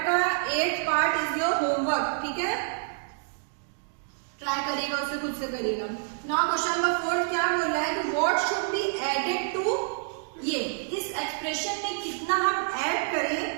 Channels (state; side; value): silent; left; 59 dB below the other